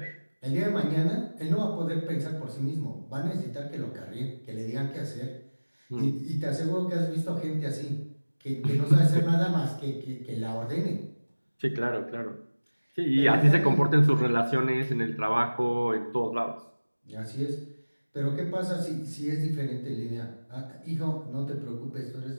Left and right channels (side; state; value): both; inverted; correlation -1.00